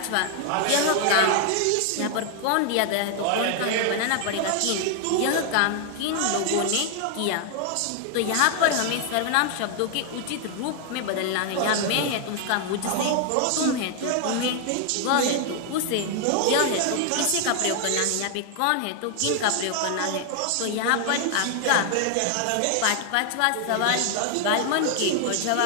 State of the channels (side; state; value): both; different; correlation 0.00